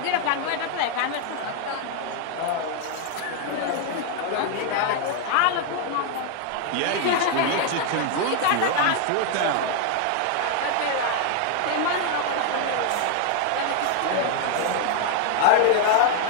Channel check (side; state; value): both; different; correlation 0.00